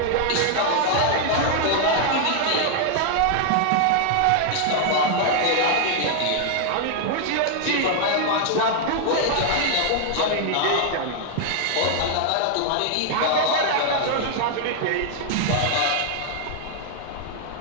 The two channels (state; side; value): different; both; correlation 0.00